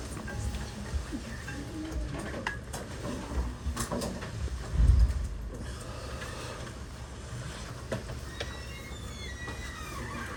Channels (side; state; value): both; identical; correlation 1.00